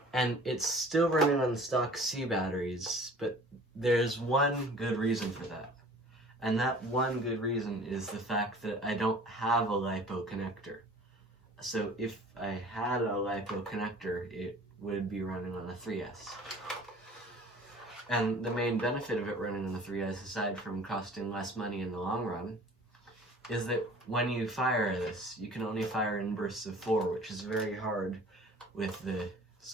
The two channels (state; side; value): normal; both; correlation 0.47